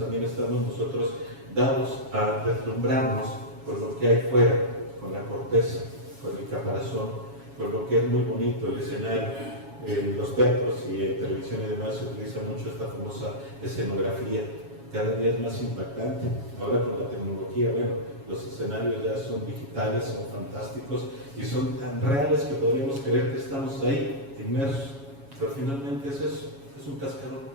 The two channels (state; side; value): late; left; 7.2 ms